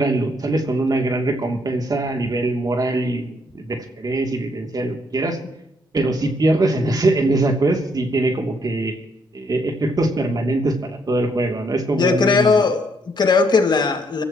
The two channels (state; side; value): normal; both; correlation 0.71